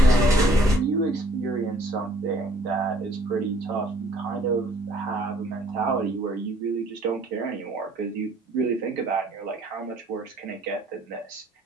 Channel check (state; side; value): normal; both; correlation 0.60